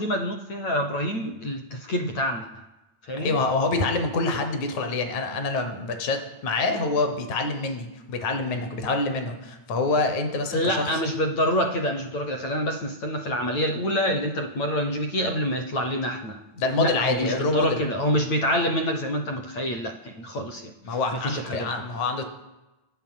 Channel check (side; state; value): right; late; 8.9 ms